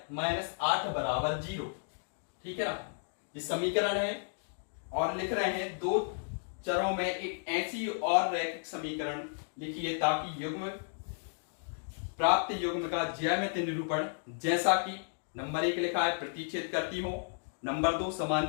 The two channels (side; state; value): right; silent; digital silence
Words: माइनस 8 बराबर 0। ठीक है ना? ये समीकरण है और लिख रहे हैं दो चरों में एक ऐसी और रैखिक समीकरण लिखिए ताकि युग्म प्राप्त युग्म का ज्यामितीय निरूपण, जैसा कि नंबर 1 लिखा है प्रतिच्छेद करती हो, नंबर 2